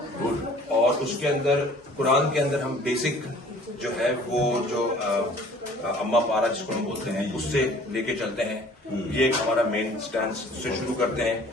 اور اس کے اندر قرآن کے اندر ہم بیسک جو ہے وہ جو اما پارا جس کو ہم بولتے ہیں اس سے لے کے چلتے ہیں. یہ ایک ہمارا مین سٹینس سے شروع کرتے ہیں.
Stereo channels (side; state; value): both; normal; correlation 0.51